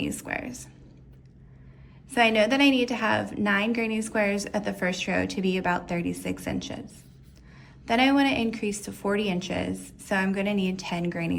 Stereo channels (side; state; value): both; identical; correlation 1.00